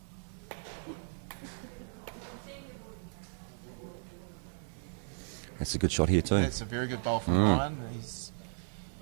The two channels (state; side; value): silent; left; digital silence